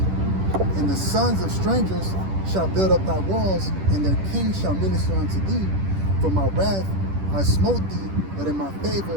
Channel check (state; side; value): late; left; 10 ms